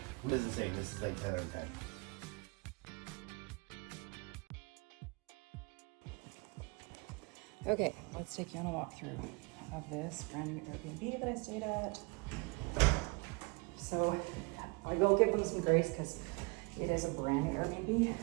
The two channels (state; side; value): quieter; left; 29.3 dB